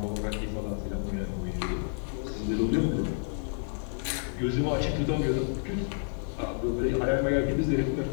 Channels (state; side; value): silent; right; 58 dB below the other